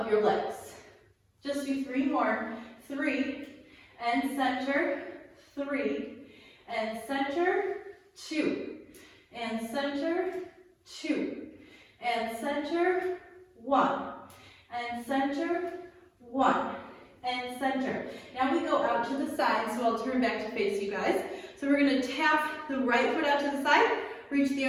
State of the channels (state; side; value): identical; both; correlation 1.00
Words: your legs. Just do 3 more. 3 and center. 3 and center. 2 and center. 2 and center. 1 and center. 1 and center. Now we go out to the side, so I'll turn back to face you guys. So we're going to tap the right foot out to the side, reach the